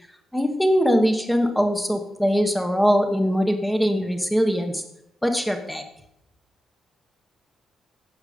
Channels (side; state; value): both; normal; correlation 0.95